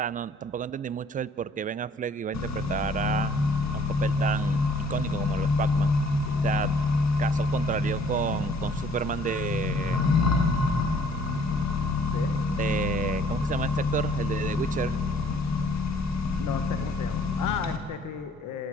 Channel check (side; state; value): both; normal; correlation 0.58